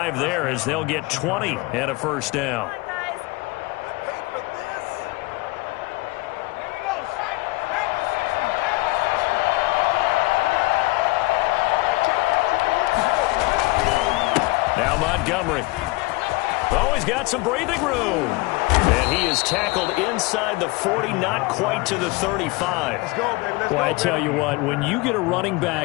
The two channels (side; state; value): right; quieter; 22.2 dB